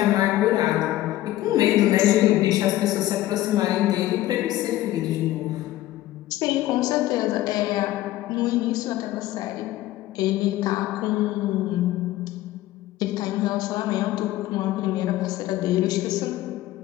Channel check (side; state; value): right; quieter; 15.2 dB